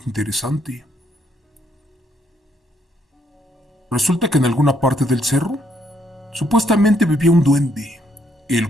interesante. Resulta que en alguna parte del cerro supuestamente vivía un duende, el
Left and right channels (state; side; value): normal; both; correlation 0.72